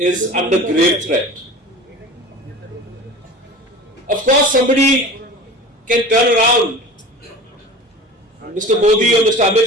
under grave threat. Of course, somebody can turn around. Mr. Modi or Mr. Amit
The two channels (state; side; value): normal; both; correlation 0.37